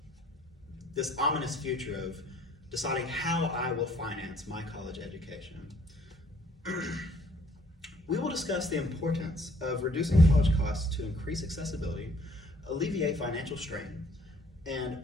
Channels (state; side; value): normal; both; correlation 0.61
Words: this ominous future of deciding how I will finance my college education. We will discuss the importance of reducing college costs to increase accessibility, alleviate financial strain, and